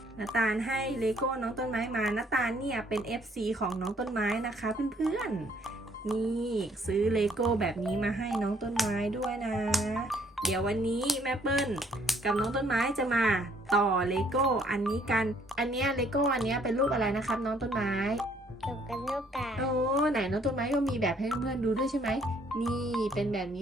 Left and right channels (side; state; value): both; normal; correlation 0.64